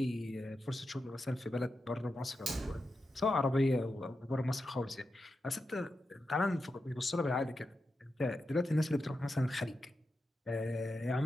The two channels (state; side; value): normal; both; correlation 0.89